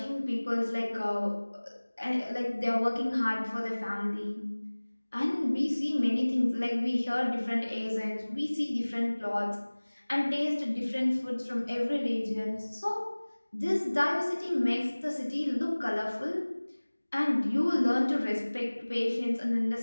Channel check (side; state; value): both; inverted; correlation -1.00